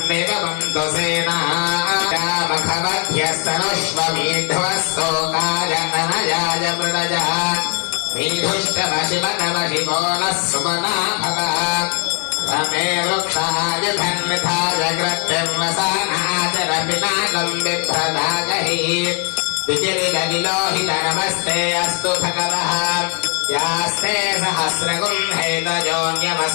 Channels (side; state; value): right; quieter; 33.7 dB